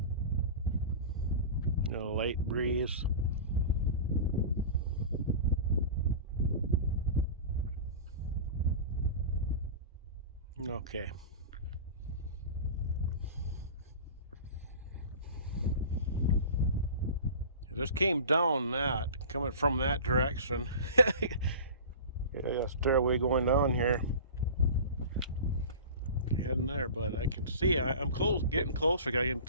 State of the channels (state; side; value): inverted; both; correlation -0.34